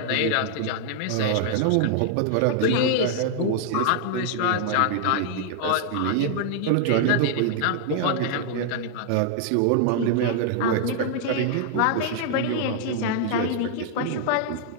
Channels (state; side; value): different; both; correlation 0.00